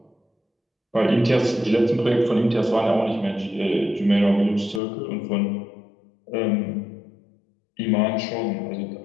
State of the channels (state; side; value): drops out; right; at 4.8 s